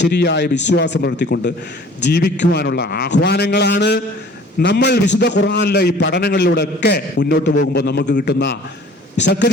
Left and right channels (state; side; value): normal; both; correlation 0.49